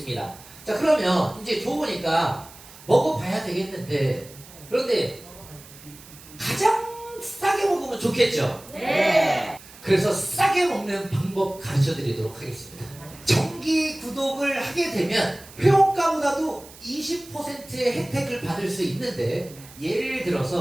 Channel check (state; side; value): noise; right; hiss, 20 dB below the sound